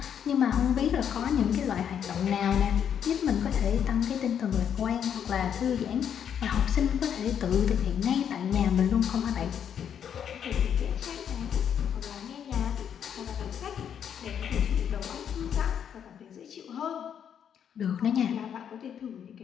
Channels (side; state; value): right; quieter; 8.5 dB